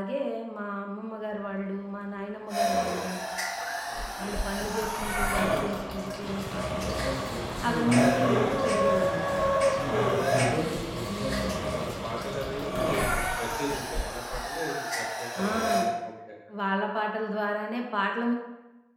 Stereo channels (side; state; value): both; identical; correlation 1.00